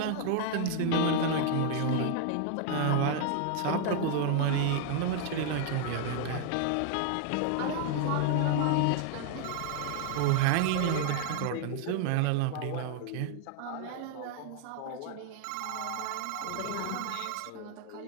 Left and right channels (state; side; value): different; both; correlation 0.00